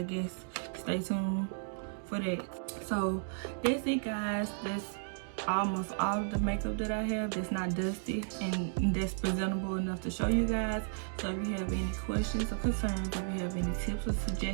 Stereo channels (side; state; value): left; silent; digital silence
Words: guess stay tuned for that. So that's it, guys. That's almost all of the makeup that I have that's not dusty and that's presentable enough to show you guys. So if you have any questions or concerns, if you have any tips or